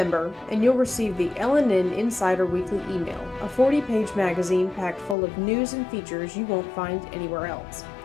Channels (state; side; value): drops out; right; at 5.2 s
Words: and you'll receive the LNN Insider Weekly Email, a 40-page magazine packed full of news and features you won't find anywhere else.